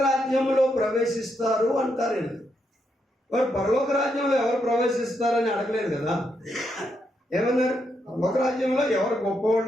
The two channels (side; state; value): both; normal; correlation 0.80